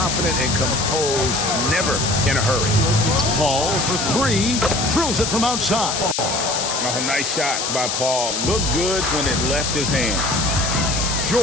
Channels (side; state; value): left; noise; hiss, 1 dB below the sound